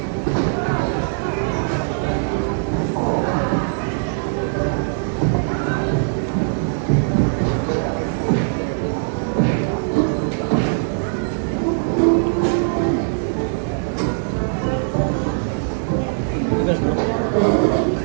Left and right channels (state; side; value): silent; left; 61 dB below the other